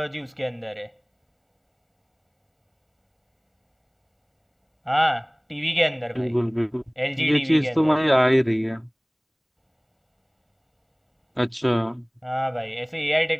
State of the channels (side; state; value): both; identical; correlation 1.00